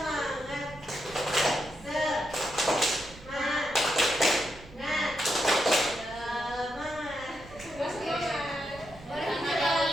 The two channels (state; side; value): noise; right; rumble, 19 dB below the sound